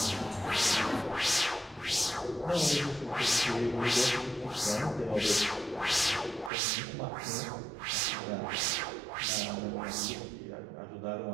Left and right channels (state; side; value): drops out; left; at 6.5 s